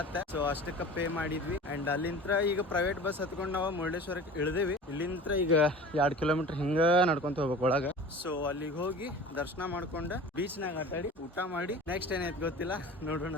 ಸೊ ಅಷ್ಟಕ್ಕೆ ಪೇ ಮಾಡಿದ್ವಿ. ಅಂಡ್ ಅಲ್ಲಿಂದ ಈಗ ಪ್ರೈವೇಟ್ ಬಸ್ ಹತ್ಕೊಂಡು ನಾವು ಮುರುಡೇಶ್ವರಕ್ಕೆ ಇಳಿದೇವಿ. ಇಲ್ಲಿಂದ ಈಗ 2 ಕಿಲೋಮೀಟರ್ ಹಿಂಗ ನಡ್ಕೊಂತ ಹೋಗ್ಬೇಕು ಒಳಗ. ಸೊ ಅಲ್ಲಿಗೆ ಹೋಗಿ ದರ್ಶನ ಮಾಡ್ಕೊಂಡು ಬೀಚ್ನಾಗ ಆಟಾಡಿ ಊಟ ಮಾಡಿ ನೆಕ್ಸ್ಟ್ ಏನೈತಿ ಗೊತ್ತಿಲ್ಲ, ನೋಡೋಣ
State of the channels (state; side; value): normal; both; correlation 0.39